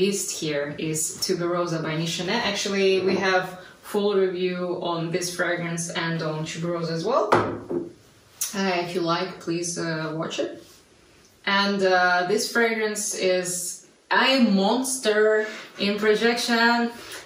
here is Tuberosa by Nichonet. Actually, we have full review on this fragrance and on Tuberosa as well. If you like, please watch it. And this fragrance is a monster in projection.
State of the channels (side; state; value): both; identical; correlation 1.00